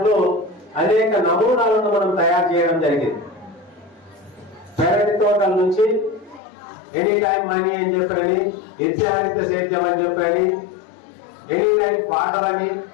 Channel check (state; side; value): drops out; right; at 6.4 s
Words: అనేక నమూనాలను మనం తయారు చేయడం జరిగింది. పెరటి తోటల నుంచి ఎనీ టైం మనీ అని చెప్పని, నిత్యహరిత సేద్యం అని చెప్పని, ఎనీ టైం ఫాటర్ అని,